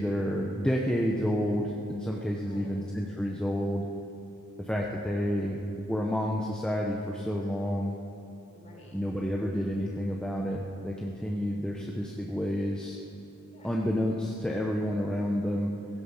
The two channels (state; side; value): normal; both; correlation 0.85